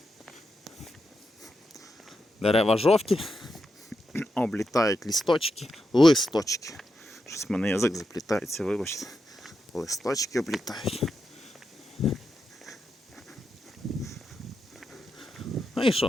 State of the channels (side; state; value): both; normal; correlation 0.86